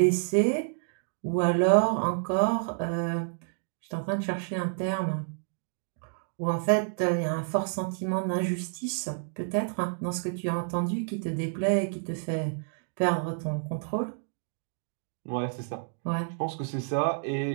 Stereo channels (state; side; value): silent; left; digital silence